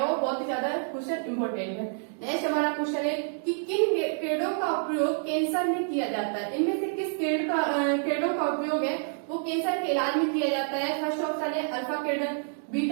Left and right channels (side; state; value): left; silent; 59 dB below the other